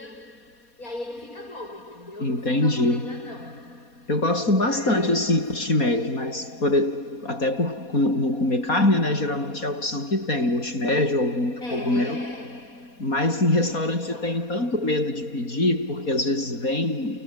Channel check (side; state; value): right; late; 4.2 ms